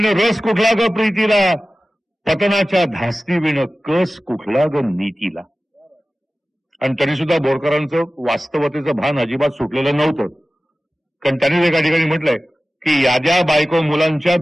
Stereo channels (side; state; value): both; normal; correlation 0.96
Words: रस कुठला ग प्रीतीला, पतनाच्या धास्ती विण कस कुठला ग नीतीला. आणि तरी सुद्धा बोरकरांचं वास्तवतेचं भान अजिबात सुटलेलं नव्हतं. कारण त्यांनी एका ठिकाणी म्हटलंय की याद्या बायको मुलांच्या